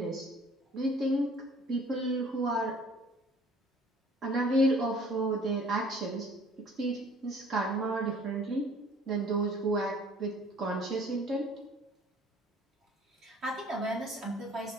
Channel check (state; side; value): normal; both; correlation 0.53